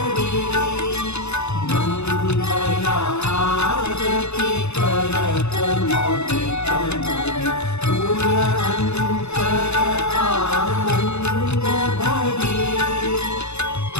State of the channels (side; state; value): right; late; 0.81 ms